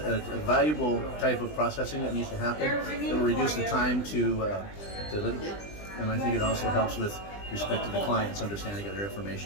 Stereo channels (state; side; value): late; right; 20 ms